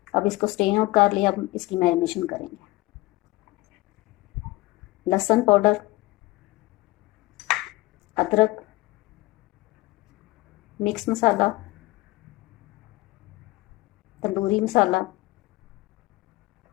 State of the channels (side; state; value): right; quieter; 20.0 dB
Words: अब इसको स्ट्रेन आउट कर लिया। अब इसकी मैरिनेशन करेंगे। लहसुन पाउडर, अदरक, मिक्स मसाला, तंदूरी मसाला,